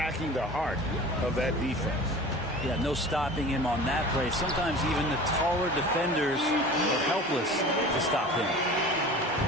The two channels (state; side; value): normal; both; correlation 0.39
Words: the heart of that defense. Yeah, no stopping him on that play. Sometimes even the taller defenders are helpless to stop him.